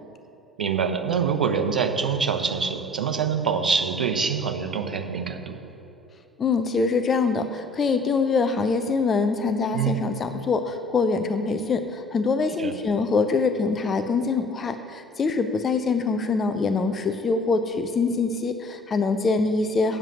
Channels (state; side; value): normal; both; correlation 0.51